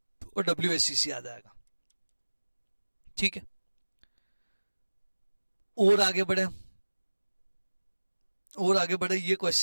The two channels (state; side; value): inverted; both; correlation -1.00